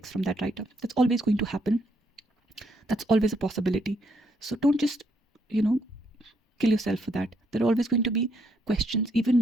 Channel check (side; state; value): both; normal; correlation 0.74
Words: from that writer. That's always going to happen. That's always a possibility. So don't just, kill yourself for that. There are always going to be questions, even